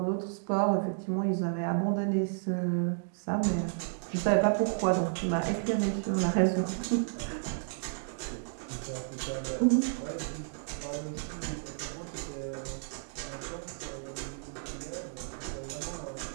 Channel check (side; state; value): left; silent; digital silence